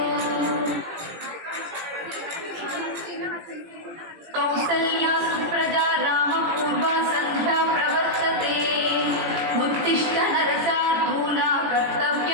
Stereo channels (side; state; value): left; late; 18 ms